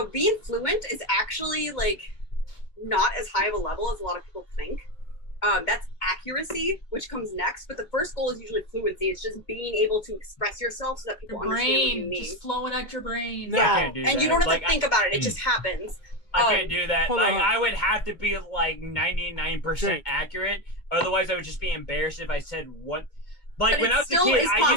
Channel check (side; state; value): right; late; 2.2 ms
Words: being fluent is actually like not as high of a level as a lot of people think. That's accuracy, which comes next. But the first goal is usually fluency. It's just being able to express yourself so that people understand what you mean. Just flowing out your brain. No. I can't do And that. you don't have Like, to think about it. It just happens. I can't do that. Hold Like on. I would have to be like 99% accurate. Otherwise, I would just be embarrassed if I said what. Like But when it I was a still kid, is I